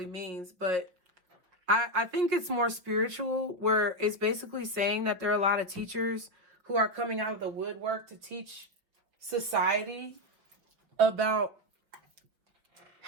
means, but I think it's more spiritual, where it's basically saying that there are a lot of teachers who are coming out of the woodwork to teach society about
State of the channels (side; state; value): left; late; 5.8 ms